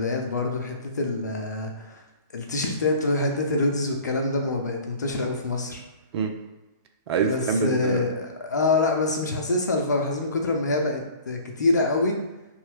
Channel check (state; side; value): inverted; both; correlation -0.47